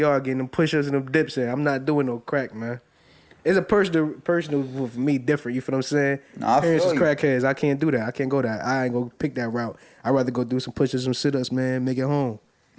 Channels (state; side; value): identical; both; correlation 1.00